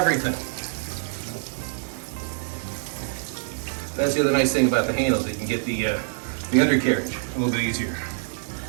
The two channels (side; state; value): left; silent; 61 dB below the other